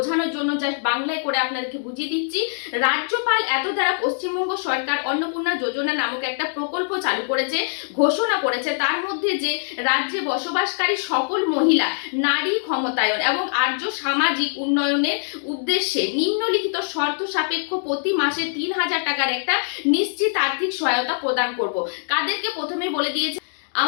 জন্য জাস্ট বাংলায় করে আপনাদেরকে বুঝিয়ে দিচ্ছি। রাজ্যপাল এত দ্বারা পশ্চিমবঙ্গ সরকার অন্নপূর্ণা যোজনা নামক একটা প্রকল্প চালু করেছে, ঘোষণা করেছে। তার মধ্যে যে রাজ্যে বসবাসকারী সকল মহিলা নারী ক্ষমতায়ন এবং আর্য সামাজিক উন্নয়নের উদ্দেশ্যে নিম্নলিখিত শর্ত সাপেক্ষ প্রতি মাসে ৩,০০০ টাকার একটা নিশ্চিত আর্থিক সহায়তা প্রদান করব। কাদেরকে প্রথমে বলে দিয়েছে,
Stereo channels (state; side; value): silent; right; digital silence